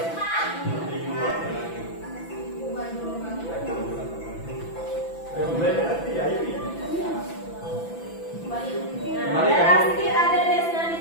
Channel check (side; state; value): right; late; 6.0 ms